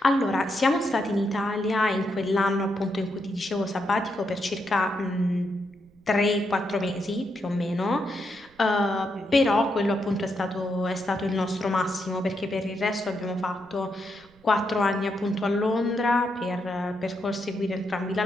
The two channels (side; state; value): right; noise; rumble, 29 dB below the sound